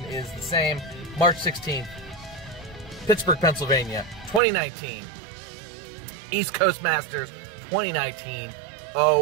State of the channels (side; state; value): left; drops out; at 4.4 s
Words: is the same. March 16th, Pittsburgh, Pennsylvania, 2019. East Coast Masters 2019.